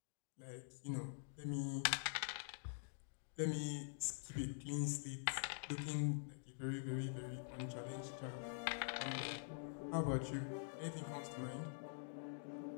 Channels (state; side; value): silent; right; digital silence